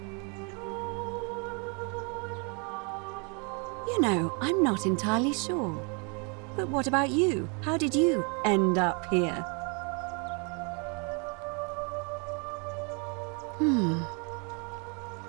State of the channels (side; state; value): left; quieter; 35.4 dB